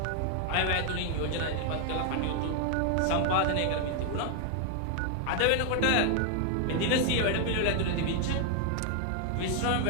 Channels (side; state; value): both; different; correlation 0.00